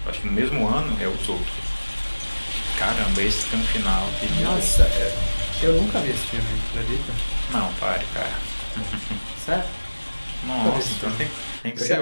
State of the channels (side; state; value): both; inverted; correlation -1.00